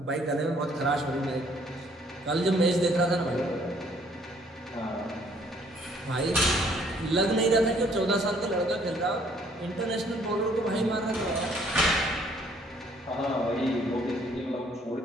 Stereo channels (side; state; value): both; normal; correlation 0.62